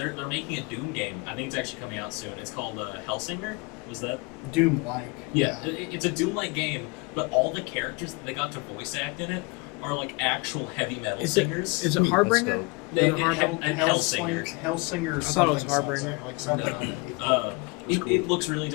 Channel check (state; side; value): quieter; right; 27.6 dB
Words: making a Doom game. I think it's actually coming out soon. It's called Hellsinger. Was that? Doom-like. It's a Doom-like game, but all the characters that they got to voice act in it are like actual heavy metal Is it singers. is it that's Harbinger? dope. They- Is it and Harbinger? Hellsinger. Hellsinger. I thought it was something, Harbinger. something, like something. No. It looks really